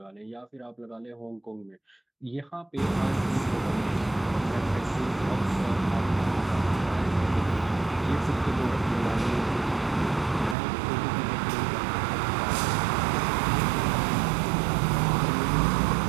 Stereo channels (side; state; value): left; drops out; at 10.6 s